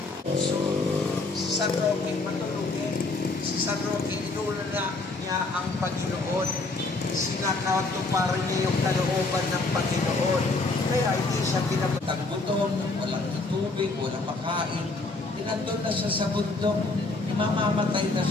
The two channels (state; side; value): quieter; right; 3.4 dB